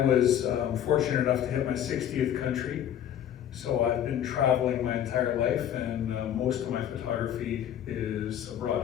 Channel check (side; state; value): right; quieter; 10.3 dB